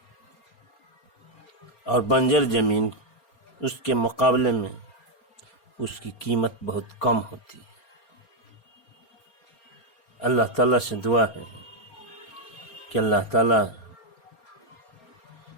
اور بنجر زمین اس کے مقابلے میں اس کی قیمت بہت کم ہوتی ہے۔ اللہ تعالیٰ سے دعا ہے کہ اللہ تعالیٰ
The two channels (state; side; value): late; right; 4.3 ms